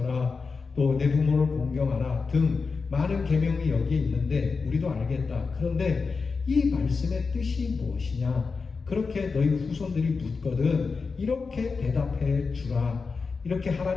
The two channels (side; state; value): right; quieter; 4.7 dB